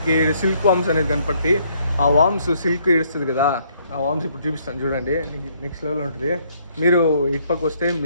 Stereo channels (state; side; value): inverted; both; correlation -0.67